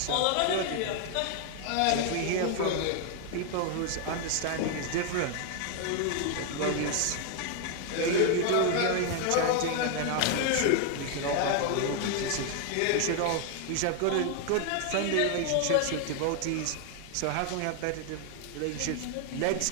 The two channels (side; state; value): both; different; correlation 0.00